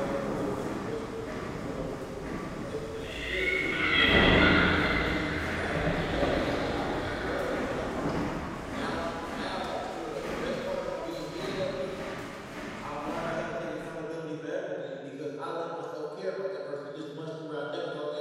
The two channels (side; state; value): both; identical; correlation 1.00